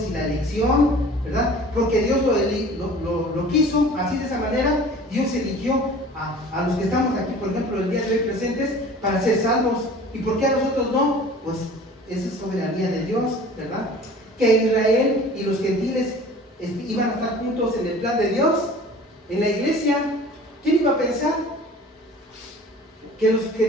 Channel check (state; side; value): normal; both; correlation 0.44